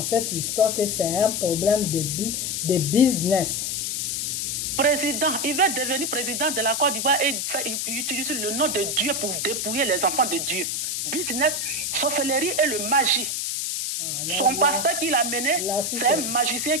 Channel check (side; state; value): left; noise; hiss, 1 dB below the sound